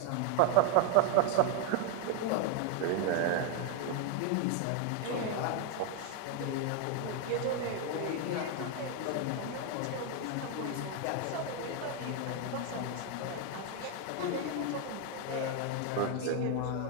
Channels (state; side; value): different; both; correlation 0.01